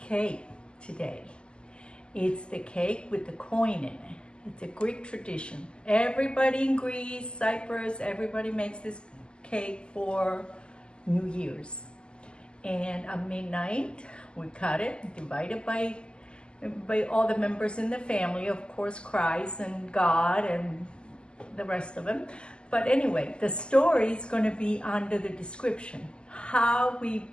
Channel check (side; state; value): right; late; 0.050 ms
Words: today. It's the cake with the coin in it. It's a Greek tradition. Everybody in Greece, Cyprus, everybody makes this cake for New Year's. And at midnight, we cut it, divide it by all the members in the family, of course, Christ and God and the rest of them. But anyway, the story is going to be under the description. How we